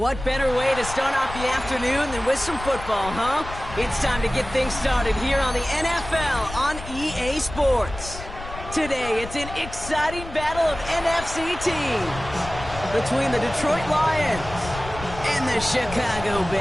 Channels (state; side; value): noise; left; rumble, 12 dB below the sound